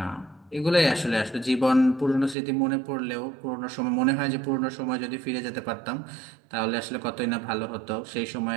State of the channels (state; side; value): drops out; left; at 2.4 s